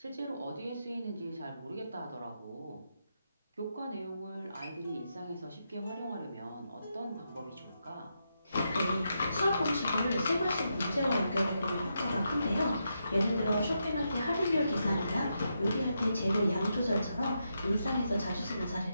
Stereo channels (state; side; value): inverted; both; correlation -0.83